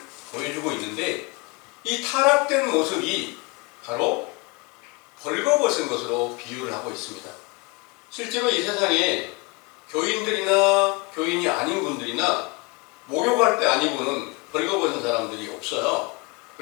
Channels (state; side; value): quieter; right; 26.9 dB